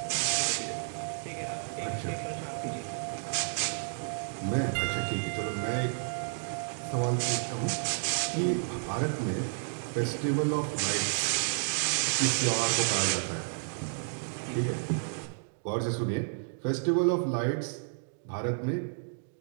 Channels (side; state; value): left; silent; digital silence